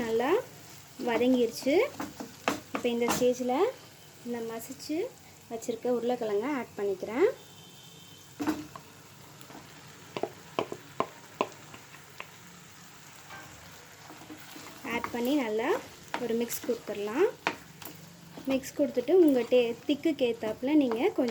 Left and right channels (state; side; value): identical; both; correlation 1.00